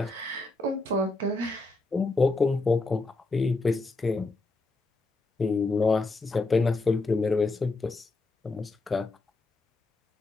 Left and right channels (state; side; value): quieter; right; 3.3 dB